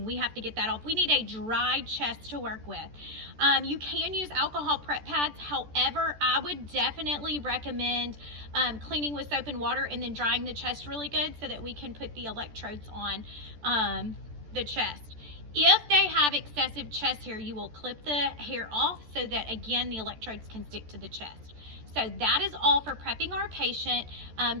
we have to get that off. We need a dry chest to work with. You can use alcohol prep pads. However, I would definitely recommend cleaning with soap and water and then drying the chest really good so that we can put the electrodes on the chest. If they have excessive chest hair, you will clip the hair off so that, again, the electrodes can stick to the chest. So that is all for prepping our patient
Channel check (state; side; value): late; left; 14 ms